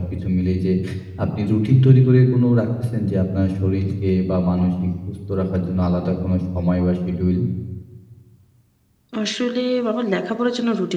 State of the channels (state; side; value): identical; both; correlation 1.00